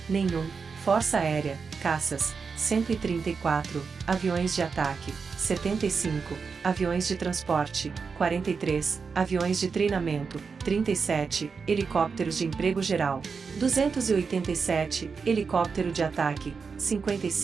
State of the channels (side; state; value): left; quieter; 5.3 dB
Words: nenhum, força aérea, caças, 134, aviões de ataque, 75, aviões de transporte, 43, aviões de treinamento, 37, helicópteros de emprego geral, 287, helicóptero de ataque,